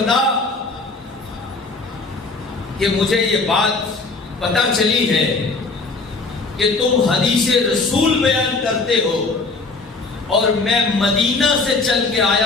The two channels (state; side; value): quieter; right; 3.8 dB